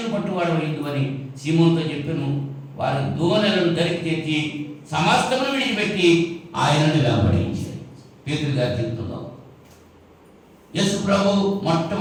పట్టువాడవైందు అని సీమోనుతో చెప్పాను. వారు దోణెలను దరికి తెచ్చి సమస్తమును విడిచిపెట్టి ఆయనను వెంబడించారు. పేతురు గారి జీవితంలో యేసు ప్రభు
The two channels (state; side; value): identical; both; correlation 1.00